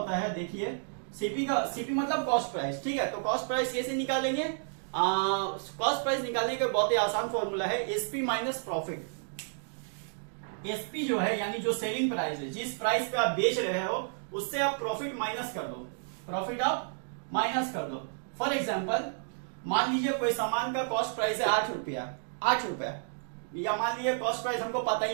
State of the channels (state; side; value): silent; left; digital silence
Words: है, देखिए सीपी मतलब कॉस्ट प्राइस। ठीक है, तो कॉस्ट प्राइस कैसे निकालेंगे? कॉस्ट प्राइस निकालने का बहुत ही आसान फॉर्मूला है एसपी माइनस प्रॉफिट। एसपी जो है यानी जो सेलिंग प्राइस है, जिस प्राइस पे आप बेच रहे हो उससे आप प्रॉफिट माइनस कर दो, फॉर एग्जाम्पल मान लीजिए कोई सामान का कॉस्ट प्राइस है 8 रुपया, या मान लीजिए कॉस्ट प्राइस हमको पता